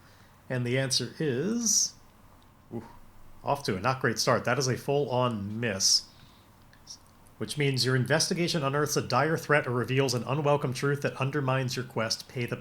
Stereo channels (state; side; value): identical; both; correlation 1.00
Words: And the answer is... off to a not great start. That is a full-on miss. Which means your investigation unearths a dire threat or reveals an unwelcome truth that undermines your quest. Pay the